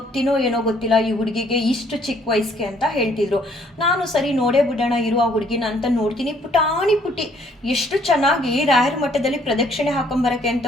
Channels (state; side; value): normal; both; correlation 0.64